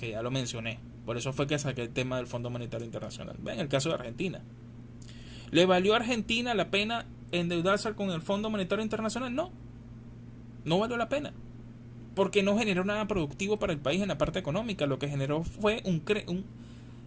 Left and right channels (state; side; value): identical; both; correlation 1.00